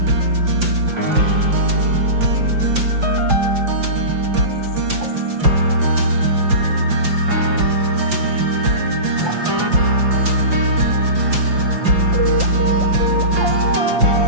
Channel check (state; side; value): late; left; 5.8 ms